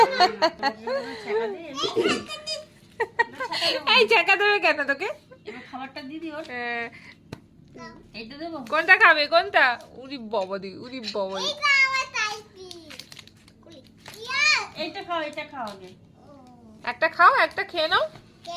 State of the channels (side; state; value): both; identical; correlation 1.00